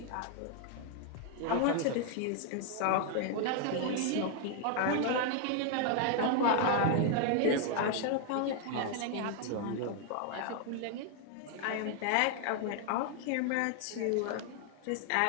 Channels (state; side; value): different; both; correlation 0.00